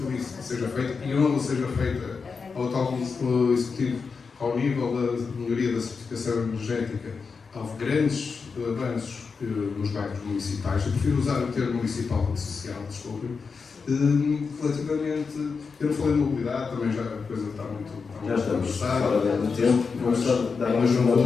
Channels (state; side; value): quieter; right; 5.1 dB